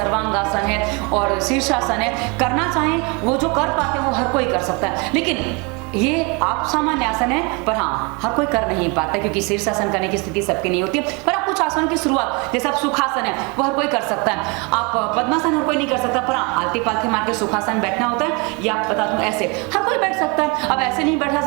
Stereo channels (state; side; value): quieter; left; 30.1 dB